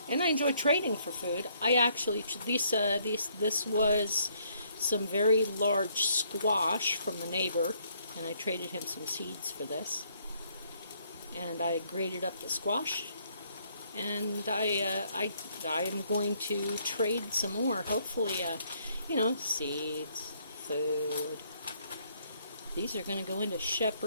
And I enjoy trading for food. I actually, this was some very large squash from the neighbor, and I traded him some seeds for this. And I grated up the squash, and I am going to trade some more. Hopefully, seeds, food. These are going to go into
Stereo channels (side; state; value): both; inverted; correlation -0.68